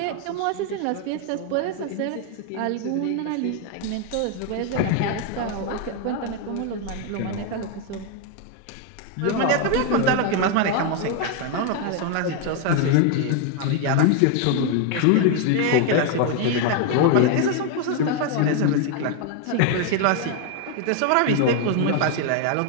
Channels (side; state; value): both; different; correlation 0.01